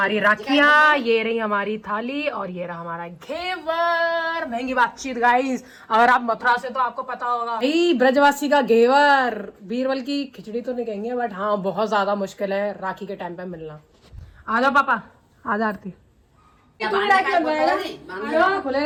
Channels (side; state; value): both; identical; correlation 1.00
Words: राखियाँ, ये रही हमारी थाली और ये रहा हमारा घेवर। महंगी बातचीत गाइस। अगर आप मथुरा से तो आपको पता होगा भाई ब्रजवासी का घेवर। बीरबल की खिचड़ी तो नहीं कहेंगे बट हाँ बहुत ज्यादा मुश्किल है राखी के टाइम पे मिलना। आ जाओ पापा, आ जा आरती। खुले